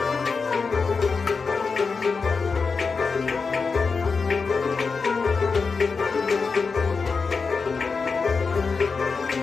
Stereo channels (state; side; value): quieter; right; 4.8 dB